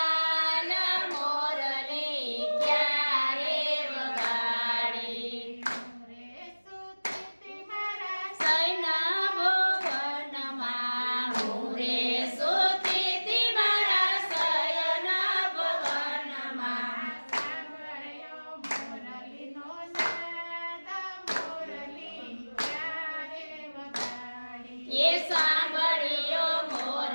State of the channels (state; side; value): inverted; both; correlation -1.00